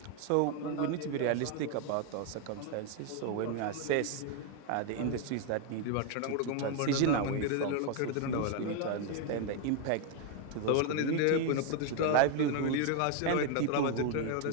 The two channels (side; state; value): both; different; correlation 0.01